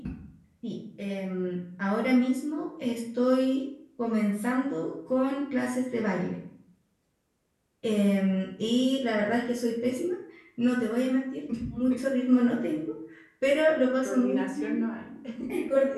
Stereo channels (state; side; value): identical; both; correlation 1.00